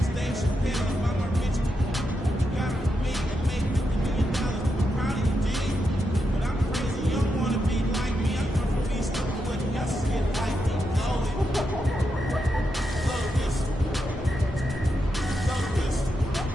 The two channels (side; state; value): both; normal; correlation 0.85